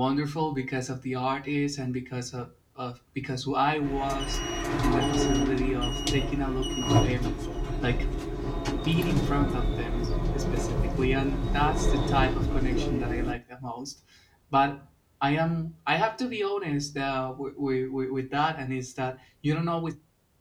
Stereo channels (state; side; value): identical; both; correlation 1.00